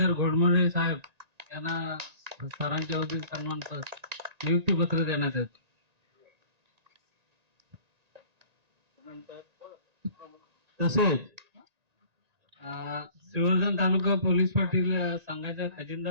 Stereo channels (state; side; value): late; left; 1.9 ms